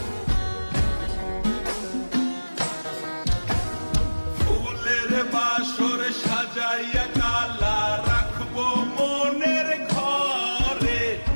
বাসর সাজাইয়া কালা রাখবো মনের ঘরে,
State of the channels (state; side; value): inverted; both; correlation -1.00